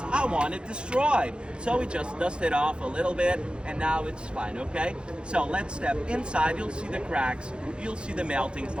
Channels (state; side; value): late; left; 0.054 ms